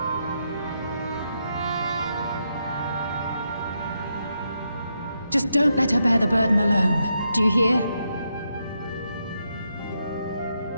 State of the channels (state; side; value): inverted; both; correlation -0.82